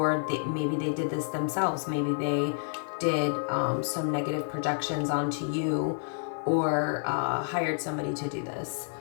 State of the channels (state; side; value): silent; right; digital silence